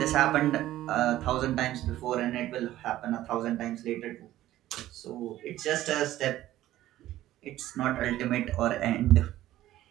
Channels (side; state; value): left; quieter; 14.4 dB